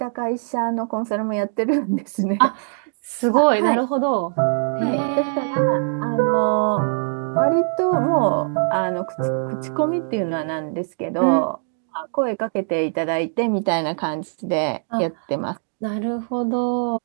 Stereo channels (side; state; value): left; silent; digital silence